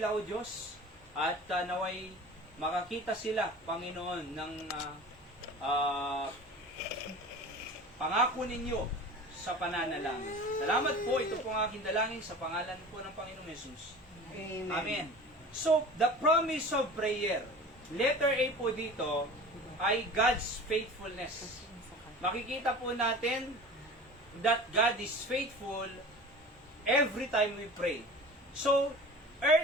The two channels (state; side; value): normal; both; correlation 0.38